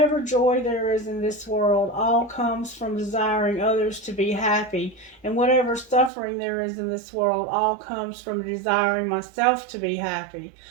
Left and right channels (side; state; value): left; drops out; at 6.1 s